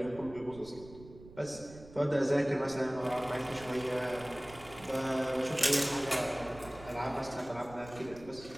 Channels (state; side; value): noise; right; rumble, 18 dB below the sound